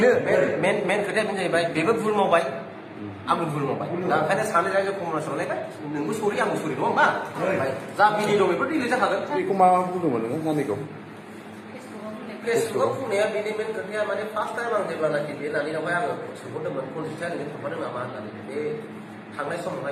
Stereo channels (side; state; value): both; identical; correlation 1.00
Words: मेन खोथाया बेनो जाहैबाय बेबो भुल मावबाय आंबो भुल मावबाय दा ओंखायनो सानै रायजो कमर्सआवलायबाय नोंबो सरि आंबो सरि नङा होमबा जा बिनि दं बेफोर डिलिट जाखागोन बेखौ मा बुंदोंमोन नोङो नानिखौ फेसबुकआव बुंनाया बेनि मेन खोथाया माने फार्स्ट टाइम आं जेब्लानाखि बे नानिनावहाय आङो सोंहरदोंमोन कनजिथिया नोङो थांफादों नामा होननानै बे थांनाय